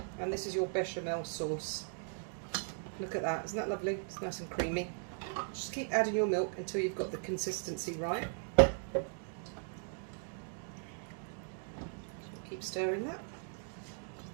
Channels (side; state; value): left; silent; 52 dB below the other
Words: And this is your bechamel sauce. Look at that, isn't that lovely? It's nice and creamy. Just keep adding your milk until you've got the consistency right. Keep stirring that